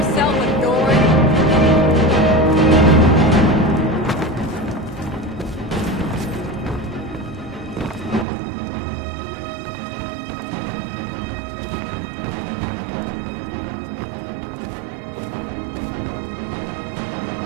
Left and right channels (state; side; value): drops out; left; at 8.2 s